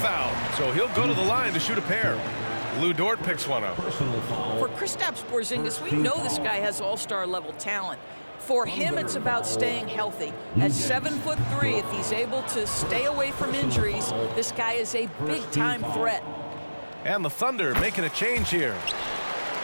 So he'll go to the line to shoot a pair. Lou Dort picks one up. For Kristaps Porzingis, we know this guy has all-star level talent. For him, it's about staying healthy. At 7'3", if he's able to stay away from injuries, this guy is a big-time threat. And the Thunder making a change here.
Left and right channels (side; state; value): both; inverted; correlation -1.00